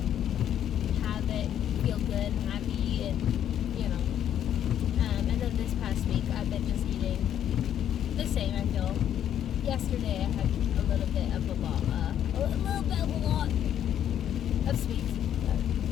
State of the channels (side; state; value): right; quieter; 10.2 dB